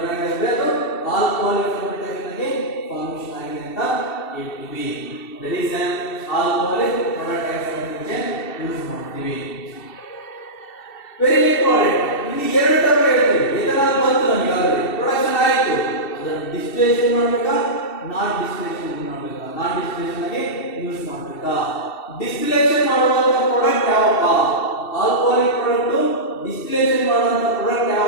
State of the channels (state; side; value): late; right; 2.7 ms